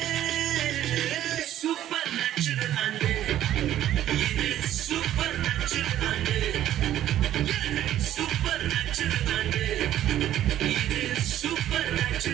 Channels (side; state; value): left; quieter; 12.2 dB